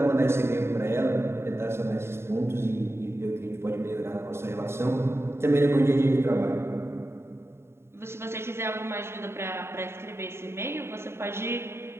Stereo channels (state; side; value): late; left; 0.12 ms